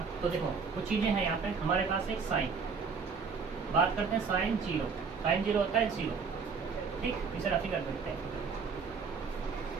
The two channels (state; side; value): quieter; left; 5.3 dB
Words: तो देखो कुछ चीज़ें हैं यहाँ पे। हमारे पास एक साइन, बात करते हैं साइन जीरो होता है 0, ठीक, इसे रफी कर देते हैं।